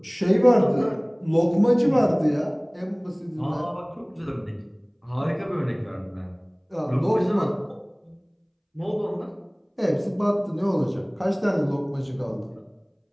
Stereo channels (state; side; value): identical; both; correlation 1.00